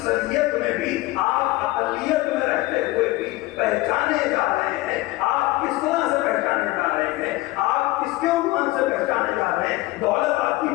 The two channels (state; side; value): quieter; right; 19.1 dB